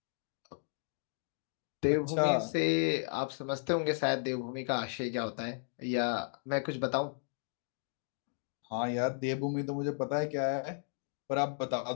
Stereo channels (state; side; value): silent; right; digital silence